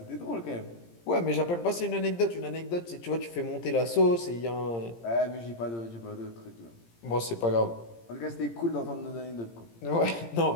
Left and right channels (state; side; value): late; right; 17 ms